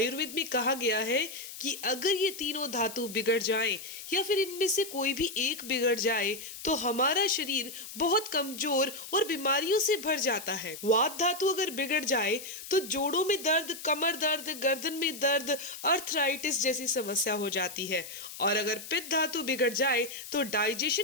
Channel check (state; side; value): noise; left; hiss, 12 dB below the sound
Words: में कहा गया है कि अगर ये तीनों धातु बिगड़ जाए या फिर इनमें से कोई भी एक बिगड़ जाए तो हमारा शरीर बहुत कमजोर और बीमारियों से भर जाता है। वात धातु अगर बिगड़ जाए तो जोड़ों में दर्द, कमर दर्द, गर्दन में दर्द, अर्थराइटिस जैसी समस्या हो जाती है। और अगर पित्त धातु बिगड़ जाए तो